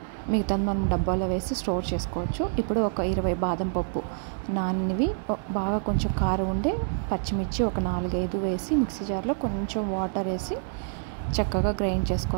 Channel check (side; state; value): left; silent; digital silence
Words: మిగతాది మనం డబ్బాలో వేసి స్టోర్ చేసుకోవచ్చు. ఇప్పుడు 20 బాదం పప్పు నానినవి, బాగా కొంచెం కారం ఉండే పచ్చిమిర్చి 4-5 వేసి మిక్సీ జార్లో కొంచెం వాటర్ వేసి చక్కగా గ్రైండ్